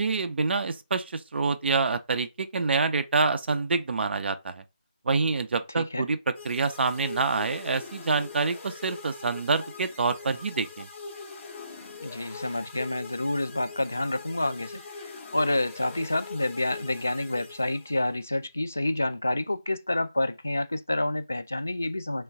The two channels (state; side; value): inverted; both; correlation -0.74